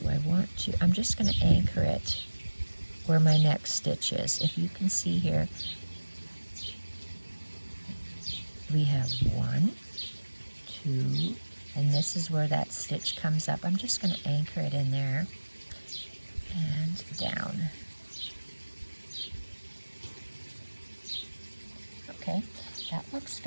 I want to? I'm just going to anchor it where my next stitch is. If you can see here, we have 1, 2, and this is where that stitch comes up. I'm just going to anchor it in there and down. Okay, that looks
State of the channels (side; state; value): both; inverted; correlation -1.00